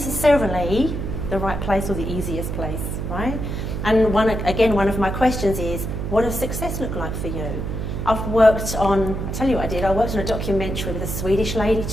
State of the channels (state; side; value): noise; right; hum, 4 dB below the sound